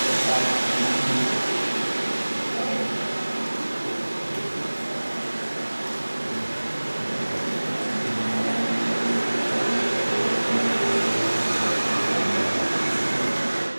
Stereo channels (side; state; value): both; inverted; correlation -1.00